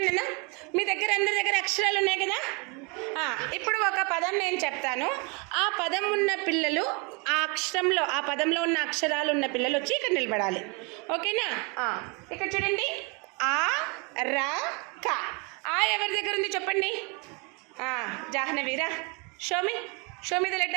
అన్న, మీ దగ్గర అందరి దగ్గర అక్షరాలు ఉన్నాయి కదా. ఇప్పుడు ఒక పదం నేను చెప్తాను, ఆ పదం ఉన్న పిల్లలు ఆ అక్షరంలో ఆ పదంలో ఉన్న అక్షరాలు ఉన్న పిల్లలు వచ్చి ఇక్కడ నిలబడాలి. ఓకేనా? ఇక్కడ చూడండి, ఆ రా క. ఆ ఎవరి దగ్గర ఉంది చెప్పండి. జాహ్నవీరా, షోమి ద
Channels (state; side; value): quieter; left; 31.4 dB